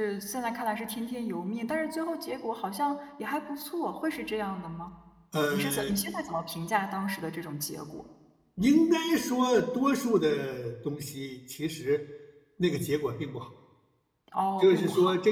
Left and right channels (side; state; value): both; identical; correlation 1.00